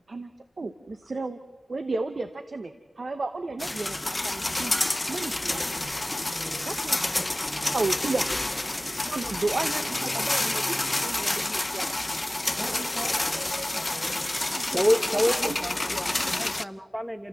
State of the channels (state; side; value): normal; both; correlation 0.97